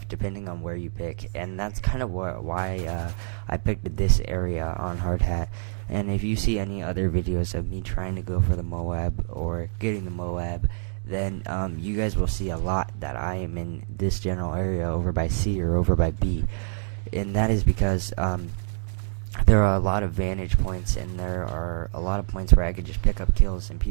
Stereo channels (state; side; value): silent; left; 61 dB below the other